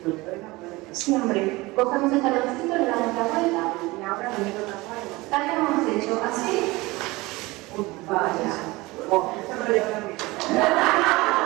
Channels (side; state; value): left; quieter; 21.6 dB